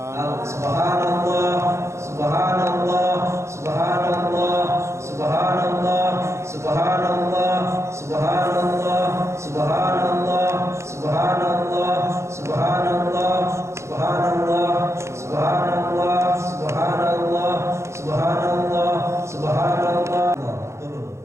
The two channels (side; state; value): left; late; 0.14 ms